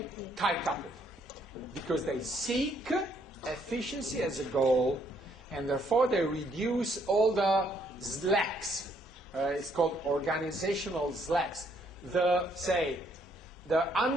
tight coupled because they seek efficiency as a goal, and therefore they reduce all the slacks. It's called organizational slacks. The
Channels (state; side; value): normal; both; correlation 0.69